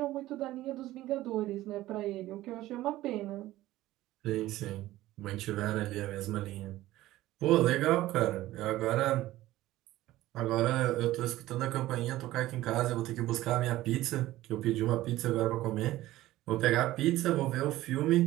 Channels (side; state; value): left; quieter; 16.0 dB